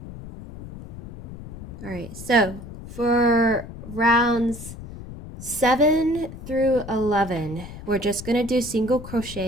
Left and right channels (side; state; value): left; noise; rumble, 13 dB below the sound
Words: Alright, so for rounds 7 through 11, we're just going to do single